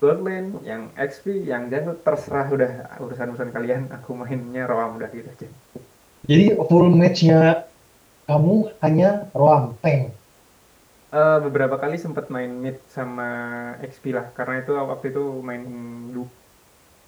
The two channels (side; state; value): both; identical; correlation 1.00